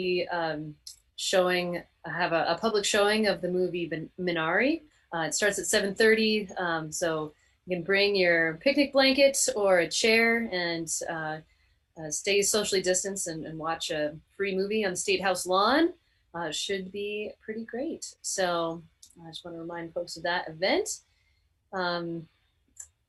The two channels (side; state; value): both; identical; correlation 1.00